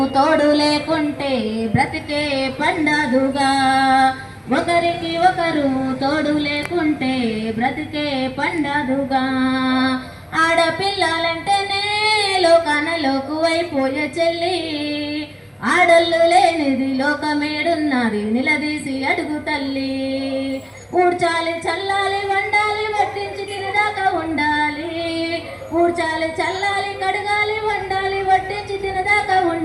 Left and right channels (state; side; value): identical; both; correlation 1.00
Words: తోడు లేకుంటే బ్రతికే పండదుగా. ఒకరికి ఒకరు తోడు లేకుంటే బ్రతికే పండదుగా. ఆడపిల్లలంటేనే లోకానలోకు అయిపోయే చెల్లి. ఆడళ్ళు లేనిది లోకమేడున్నది నిలదీసి అడుగు తల్లి. ఊడ్చాలి చల్లాలి వండాలి వడ్డించి తినదాకా ఉండాలి. ఊడ్చాలి చల్లాలి కడగాలి వండాలి వడ్డించి తినదాకా